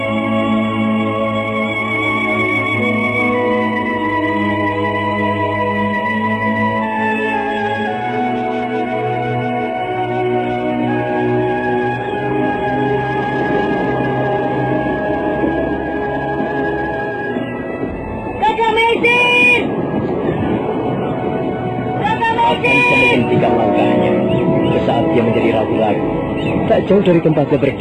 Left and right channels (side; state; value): both; identical; correlation 1.00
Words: Sejauh dari tempatnya